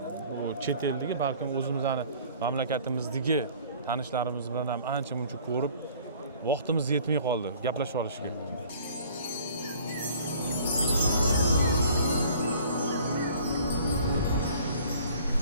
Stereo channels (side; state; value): both; inverted; correlation -0.51